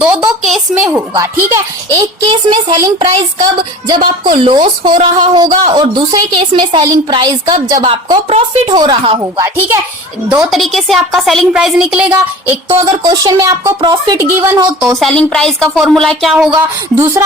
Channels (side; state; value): both; normal; correlation 0.39